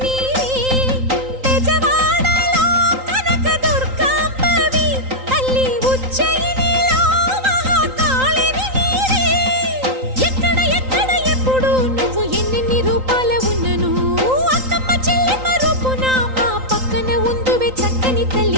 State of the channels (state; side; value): late; left; 3.8 ms